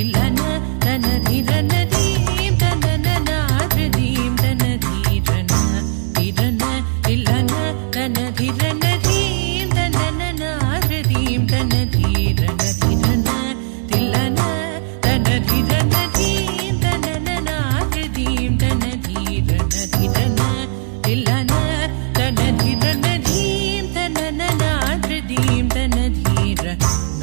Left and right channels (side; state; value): left; silent; digital silence